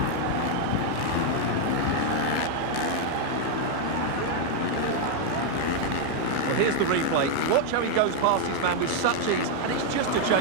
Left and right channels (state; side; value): different; both; correlation 0.00